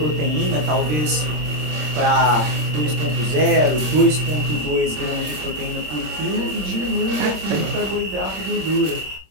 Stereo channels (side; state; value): left; late; 26 ms